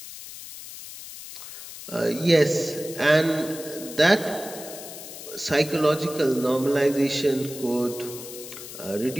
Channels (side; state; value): left; noise; hiss, 12 dB below the sound